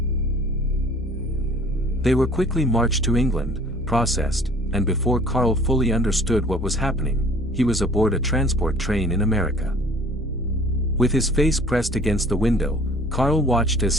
They were quickly marched to England, processed, and before Karl fully understood what was happening, he was aboard a transport train in America. With his face pressed against the window, Karl watched as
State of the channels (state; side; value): normal; both; correlation 0.51